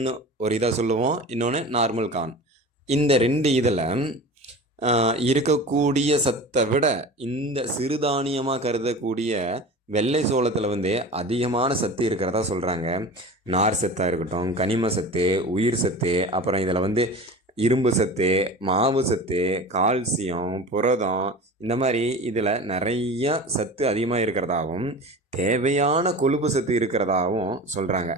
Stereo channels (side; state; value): both; normal; correlation 0.34